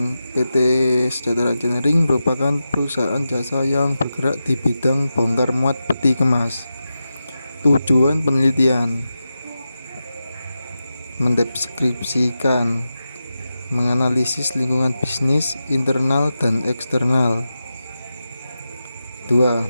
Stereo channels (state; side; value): inverted; both; correlation -0.91